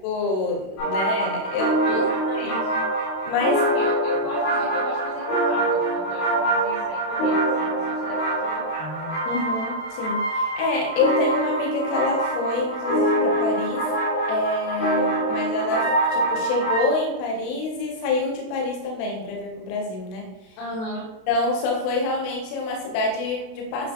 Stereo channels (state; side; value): late; right; 32 ms